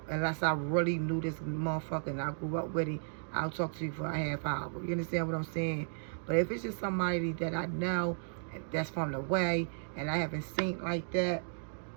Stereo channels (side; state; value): left; silent; digital silence